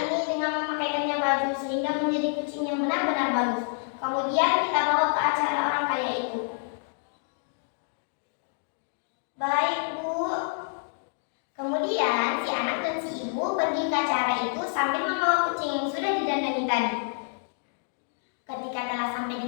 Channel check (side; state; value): right; silent; digital silence